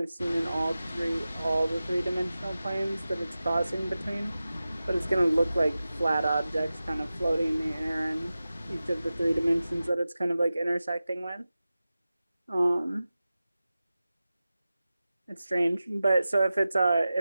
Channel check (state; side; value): inverted; both; correlation -0.95